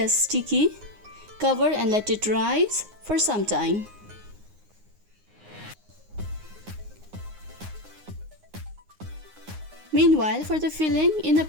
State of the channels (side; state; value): left; late; 9.6 ms